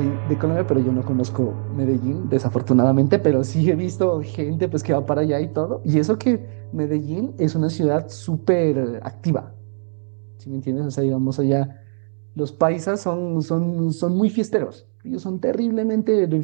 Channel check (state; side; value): silent; left; digital silence